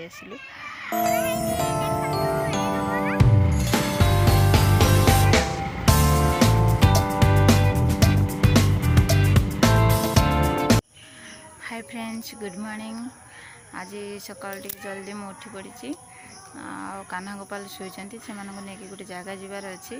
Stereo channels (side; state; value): both; identical; correlation 1.00